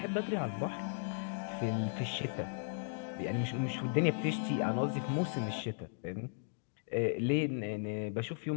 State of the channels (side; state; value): right; silent; digital silence